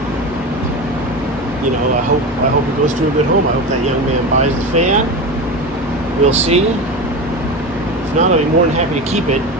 I hope it goes to a good home. I hope that young man buys the fan. We'll see. If not, I'll be more than happy to keep it.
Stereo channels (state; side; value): normal; both; correlation 0.24